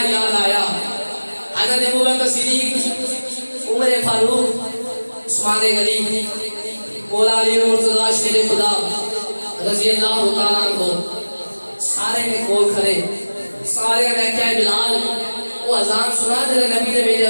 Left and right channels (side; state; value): both; inverted; correlation -1.00